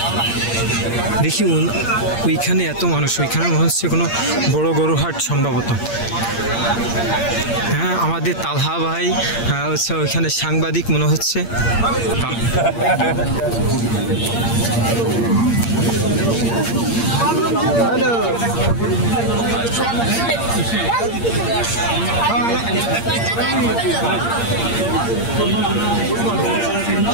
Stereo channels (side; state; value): right; late; 8.7 ms